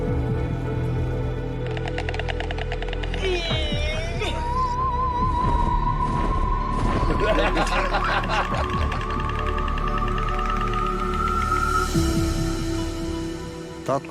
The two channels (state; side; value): identical; both; correlation 1.00